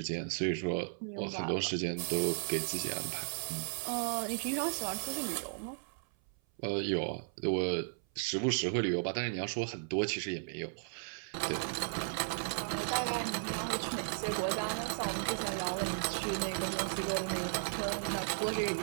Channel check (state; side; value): silent; left; 54 dB below the other